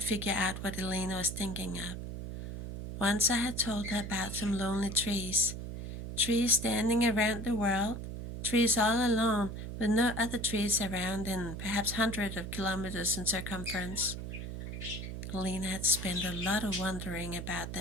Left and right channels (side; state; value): right; noise; hum, 7 dB below the sound